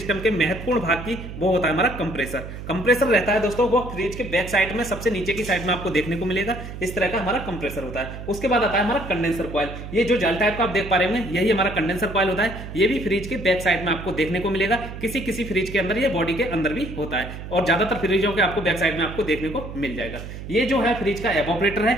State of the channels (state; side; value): noise; right; hum, 10 dB below the sound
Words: के महत्वपूर्ण भाग की। वो होता है हमारा कंप्रेसर। कंप्रेसर रहता है दोस्तों, वो फ्रिज के बैक साइड में सबसे नीचे की साइड में आपको देखने को मिलेगा। इस तरह का हमारा कंप्रेसर होता है। उसके बाद आता है हमारा कंडेंसर कॉइल। ये जो जाल टाइप का आप देख पा रहे होंगे, यही हमारा कंडेंसर कॉइल होता है। ये भी फ्रिज के बैक साइड में आपको देखने को मिलेगा। किसी किसी फ्रिज के अंदर, ये बॉडी के अंदर भी होता है और ज्यादातर फ्रिजों के आपको बैक साइड में आपको देखने को मिल जाएगा। ये जो है फ्रिज का एवापोरेटर है,